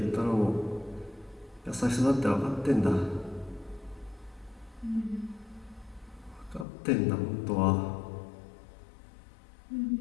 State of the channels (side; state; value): right; drops out; at 6.7 s